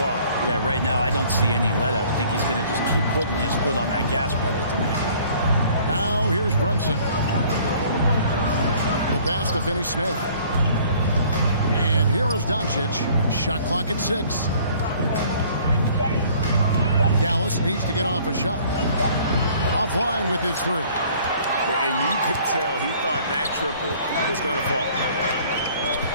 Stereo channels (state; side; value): inverted; both; correlation -0.55